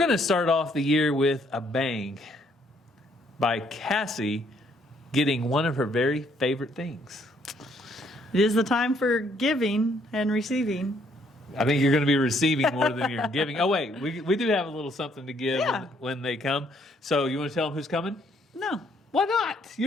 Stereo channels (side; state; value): both; normal; correlation 0.68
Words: to start off the year with a bang by Cassie getting one of her very favorite things. It is the time for giving and receiving. I think you're going to be receiving more than you're giving. Oh, wait, we do have a little something to give when they come. So you want to tell them who's coming? No. Why not?